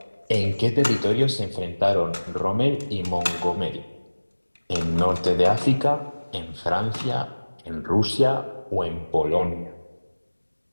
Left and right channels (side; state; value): both; inverted; correlation -1.00